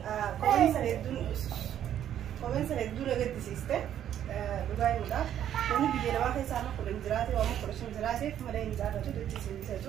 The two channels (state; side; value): quieter; left; 10.5 dB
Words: كومنت سندون لقيت سيستة بقاي ولا كوني بيجي أنا ما خيس أنا كل نزارتي وما كلش نزارتي فما لا نزارتي تدري